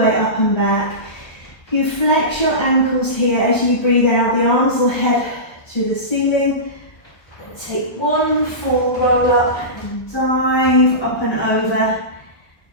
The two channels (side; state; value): right; late; 1.3 ms